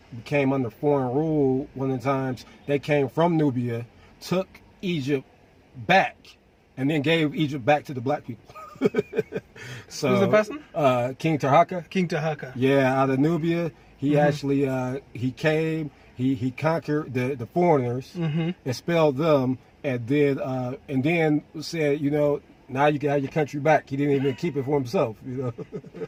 under foreign rule. One of the times they came from Nubia, took Egypt back, and then gave Egypt back to the black people. So who's the person? King Tahaka. King Tahaka. Yeah, out of Nubia. He actually he came. He conquered the foreigners, expelled them, and then said, now you can have your country back. He didn't even keep it for himself.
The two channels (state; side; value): identical; both; correlation 1.00